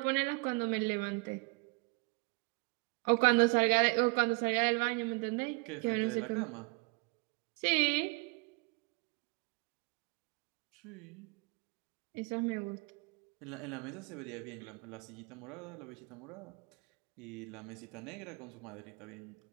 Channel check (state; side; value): quieter; left; 30.3 dB